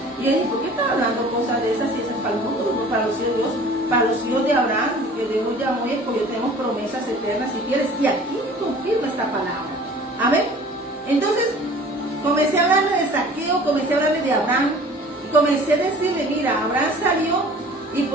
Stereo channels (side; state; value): both; normal; correlation 0.47